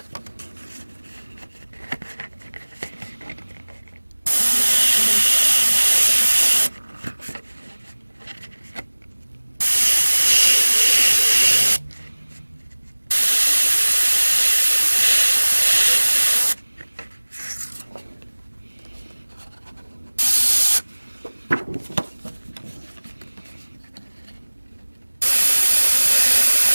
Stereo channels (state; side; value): inverted; both; correlation -1.00